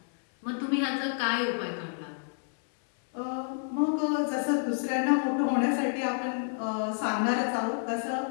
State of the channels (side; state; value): right; silent; 58 dB below the other